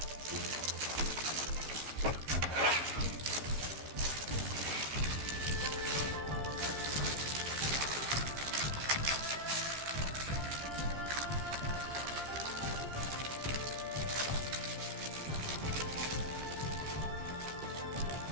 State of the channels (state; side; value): late; left; 14 ms